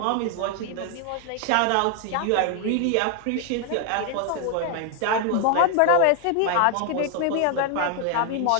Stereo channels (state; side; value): different; both; correlation 0.00